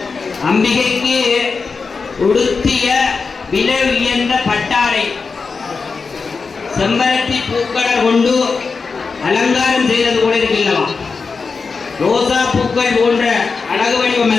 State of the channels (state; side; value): quieter; right; 4.8 dB